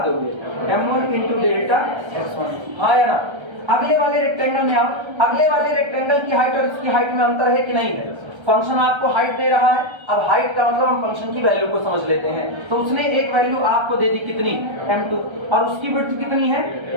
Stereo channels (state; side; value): late; left; 1.3 ms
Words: दोगे, m1 इंटू डेल्टा x1, हाँ या ना। अगले वाले रेक्टेंगल में आओ, अगले वाले रेक्टेंगल की हाइट और इसकी हाइट में अंतर है कि नहीं है। फंक्शन आपको हाइट दे रहा है, अब हाइट का मतलब हम फंक्शन की वैल्यू को समझ लेते हैं। तो उसने एक वैल्यू आपको दे दी कितनी, m2, और उसकी विड्थ कितनी है,